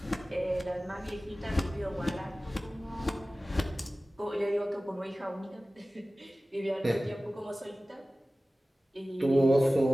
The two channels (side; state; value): both; normal; correlation 0.97